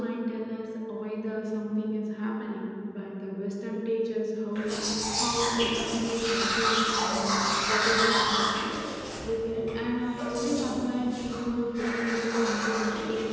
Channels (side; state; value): both; identical; correlation 1.00